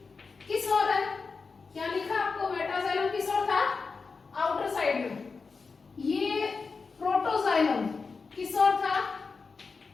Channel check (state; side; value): quieter; right; 4.7 dB